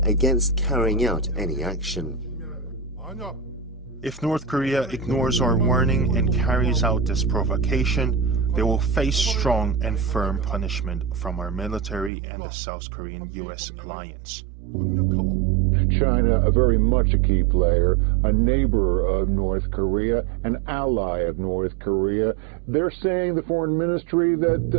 against carrying out any action. If North Korea ignores our warning and carries out this provocation, they will face strong and firm punishment from our military and the South Korean-US alliance. China, a very much a key player, a neighbor of North Korea, an ally of North Korea. They're saying, the foreign ministry,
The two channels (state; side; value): drops out; left; at 12.1 s